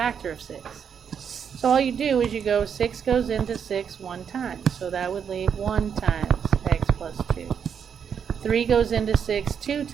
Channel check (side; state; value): left; quieter; 7.4 dB